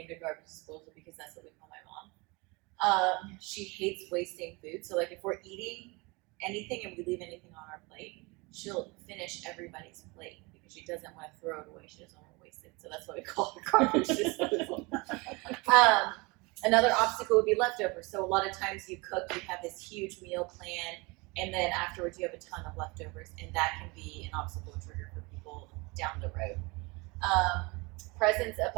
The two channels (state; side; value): quieter; left; 26.4 dB